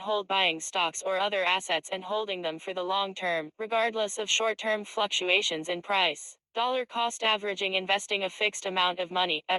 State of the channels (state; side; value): identical; both; correlation 1.00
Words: hold: buying stocks or other assets and holding them for the long term, regardless of short-term fluctuations in price. Dollar cost averaging: investing a fixed amount of money